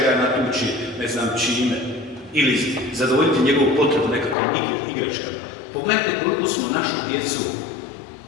natući, ne znam čime. Ili zadovoljiti njegovu potrebu nekakvom igračkama. Pogledajte koliko smo našu djecu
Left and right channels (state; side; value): drops out; right; at 4.4 s